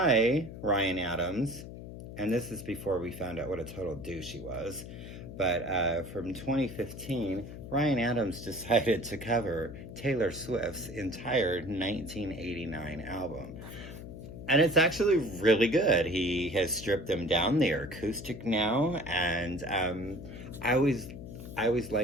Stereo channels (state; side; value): noise; left; hum, 12 dB below the sound